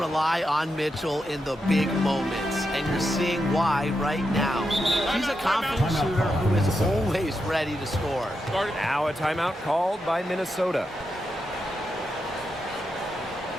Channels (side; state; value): both; normal; correlation 0.86